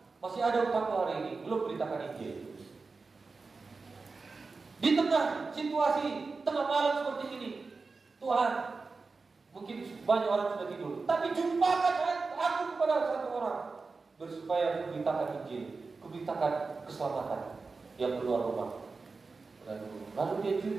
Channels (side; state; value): left; quieter; 4.2 dB